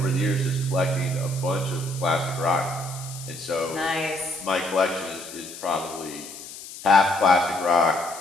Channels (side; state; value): left; noise; hiss, 13 dB below the sound